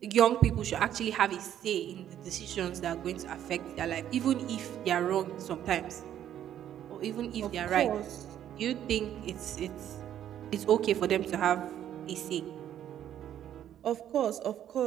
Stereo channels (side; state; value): left; quieter; 10.8 dB